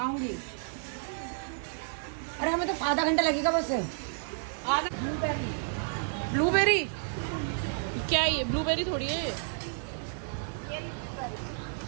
अरे हमें तो आधा घंटा लगेगा बस। ब्लूबेरी क्या है ये? ब्लूबेरी थोड़ी है।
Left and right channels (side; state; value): left; silent; digital silence